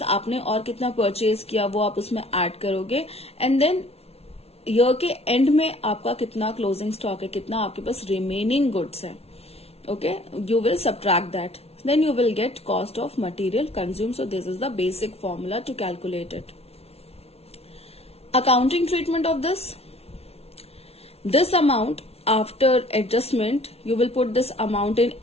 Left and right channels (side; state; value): right; late; 0.30 ms